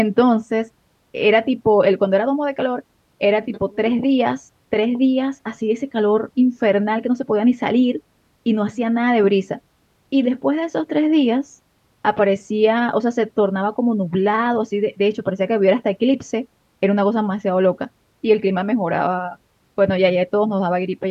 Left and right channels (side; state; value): both; identical; correlation 1.00